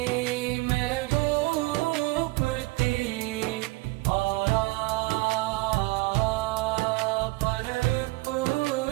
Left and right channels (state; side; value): quieter; left; 22.2 dB